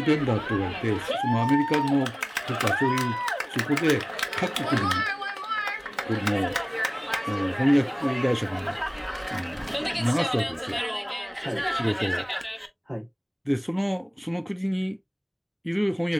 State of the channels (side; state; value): both; identical; correlation 1.00